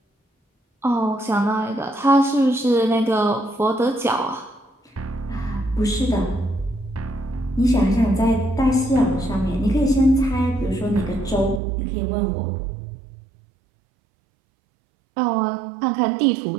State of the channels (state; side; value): drops out; left; at 11.6 s